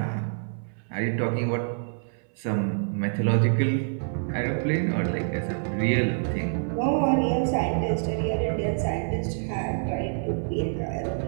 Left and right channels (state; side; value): silent; left; 60 dB below the other